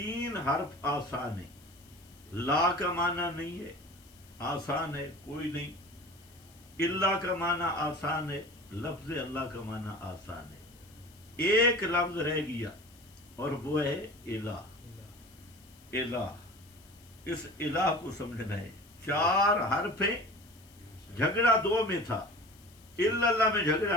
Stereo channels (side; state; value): left; noise; hiss, 26 dB below the sound